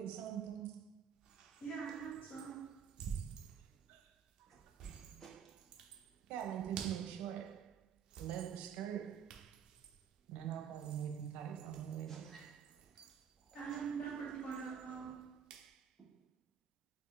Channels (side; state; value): left; quieter; 8.0 dB